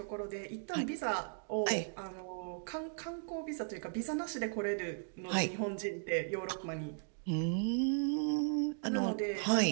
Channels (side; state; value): left; silent; digital silence